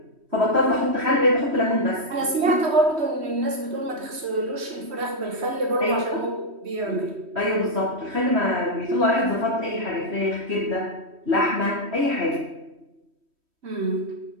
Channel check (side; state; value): left; late; 3.1 ms